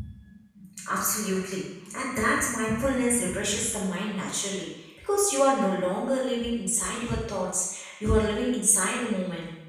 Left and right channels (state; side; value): identical; both; correlation 1.00